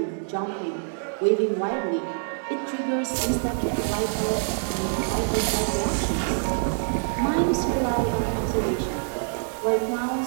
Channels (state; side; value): silent; left; 61 dB below the other